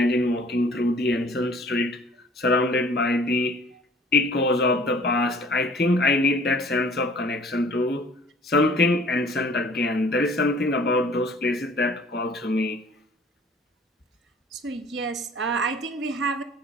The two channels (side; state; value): both; normal; correlation 0.52